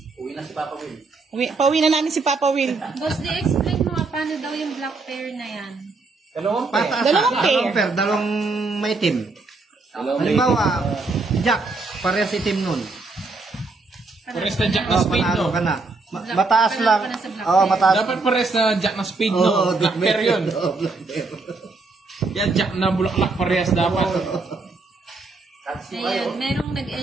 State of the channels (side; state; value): left; quieter; 3.8 dB